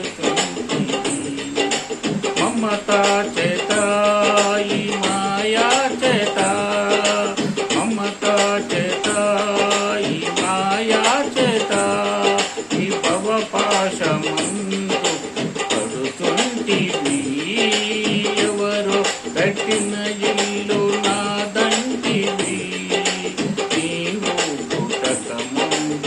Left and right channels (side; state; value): both; identical; correlation 1.00